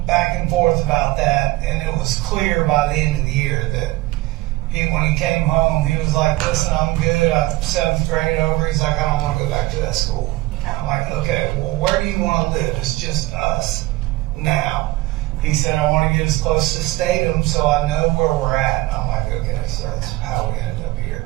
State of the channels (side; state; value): left; quieter; 18.7 dB